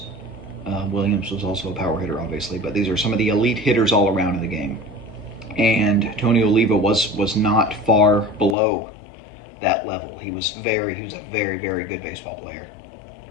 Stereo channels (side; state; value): right; drops out; at 8.6 s